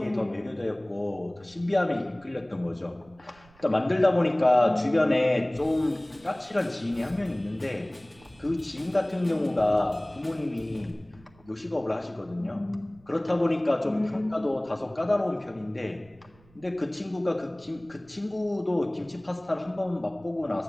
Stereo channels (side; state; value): right; noise; rumble, 28 dB below the sound